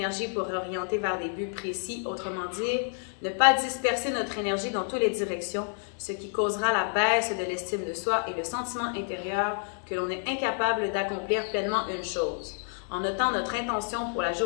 pour orienter vers des buts précis, autrement dit, ne pas disperser notre énergie dans toutes les directions, ce qui causera la baisse de l'estime de soi et le sentiment intérieur que l'on est incapable d'accomplir pleinement une chose. En notant notre intention pour la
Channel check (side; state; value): right; silent; 56 dB below the other